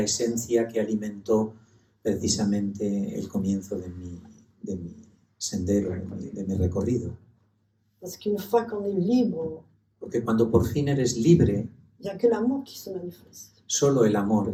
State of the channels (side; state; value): both; identical; correlation 1.00